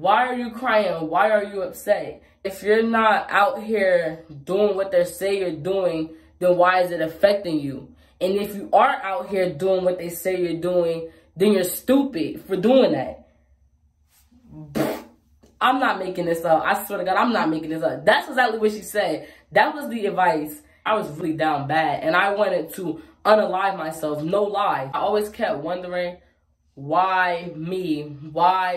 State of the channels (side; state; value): both; identical; correlation 1.00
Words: are you crying? Why are you upset? If you're not out here doing what they say you're doing, then why is it affecting you? And if you are out here doing what they say you're doing, then you're stupid for doing that. I'm not making this up. I swear to God, I'm not making this up. That's exactly what she said. That was the advice. I was really down bad, and I wanted to unalive myself. No lie. I always kept wondering, why me?